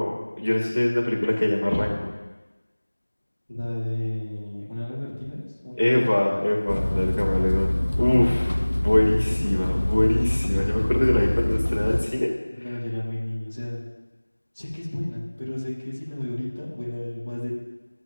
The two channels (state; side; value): inverted; both; correlation -1.00